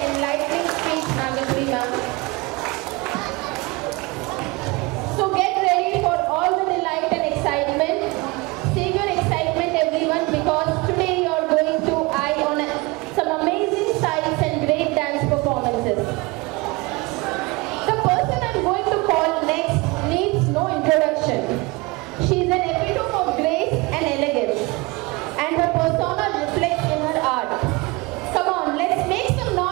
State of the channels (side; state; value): left; quieter; 24.9 dB